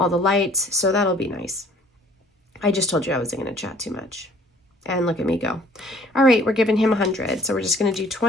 the lights. So that'll be nice. I just told you I wasn't going to chat too much. And look at me go. All right, we're giving him 100. So we're just going to do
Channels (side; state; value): both; normal; correlation 0.56